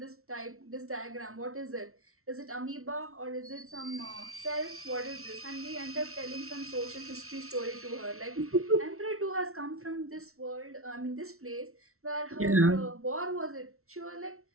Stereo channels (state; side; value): late; left; 0.63 ms